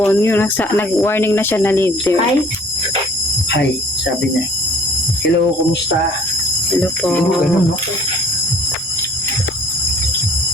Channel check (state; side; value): normal; both; correlation 0.54